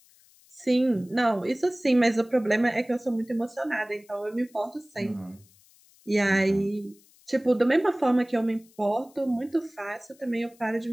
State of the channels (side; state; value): left; noise; hiss, 29 dB below the sound